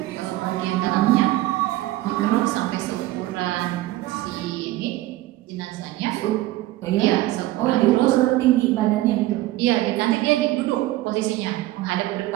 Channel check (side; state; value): left; quieter; 16.6 dB